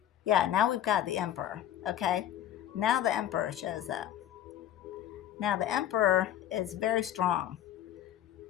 Yeah, now we've got the Emperor, okay? Now the Emperor shows up. Now the Emperor is very strong.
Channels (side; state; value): right; quieter; 11.4 dB